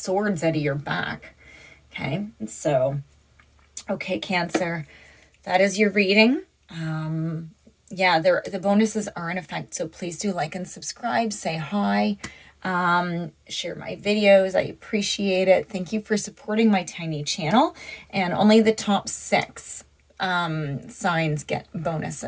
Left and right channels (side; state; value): both; identical; correlation 1.00